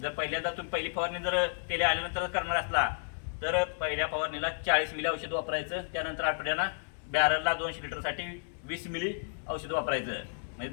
जर पहिल्यांदा तुम्ही पहिली फवारणी जर तेले आल्यानंतर करणार असला तर पहिल्या फवारणीला 40 मिली औषध वापरायचं. त्यानंतर आठवड्याला बॅरलला 200 लिटरसाठी 20 मिली औषध वापरायचं. म्हणजे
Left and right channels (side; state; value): right; silent; digital silence